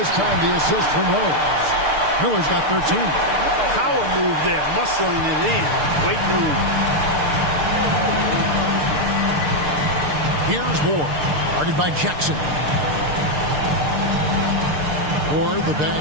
time the assist from Rose. Miller's got 13. Power move there, muscling it in. Weight move. Here's Ward, guarded by Jackson. Ward, the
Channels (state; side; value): late; left; 6.7 ms